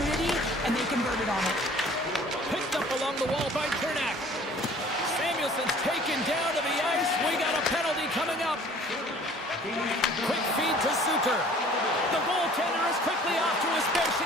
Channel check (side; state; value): both; normal; correlation 0.51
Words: and they converted on it. Picked up along the wall by Kernak. Samuelson's taken down to the ice. We got a penalty coming up. Quick feed to Suter. The goaltender is quickly off to his bench to